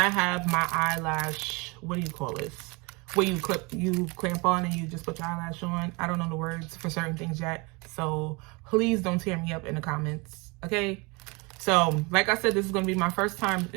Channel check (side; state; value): left; quieter; 27.9 dB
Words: have my eyelash, what do you call this? Where you clamp on and you just put your eyelash on. I don't know the words for certain things yet, so please don't tear me up in the comments, okay? So like I said, this is gonna be my first time